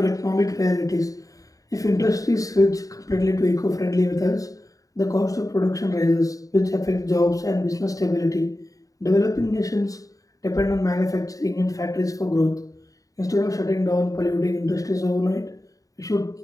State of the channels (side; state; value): right; late; 0.17 ms